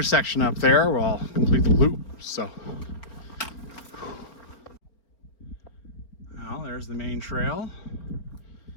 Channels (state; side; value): late; right; 4.2 ms